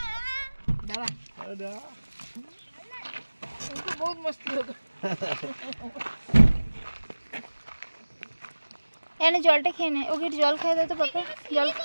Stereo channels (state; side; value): inverted; both; correlation -1.00